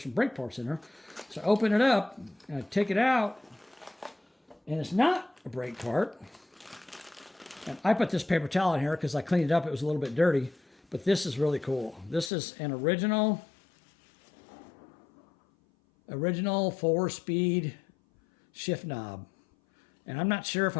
some brake parts in there. So I open it up and I take it out. And it's not a brake part. And I put this paper towel in here because I cleaned it up. It was a little bit dirty. But this is really cool. This is an original 4-speed shift knob. And I'm not sure if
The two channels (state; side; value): drops out; right; at 12.3 s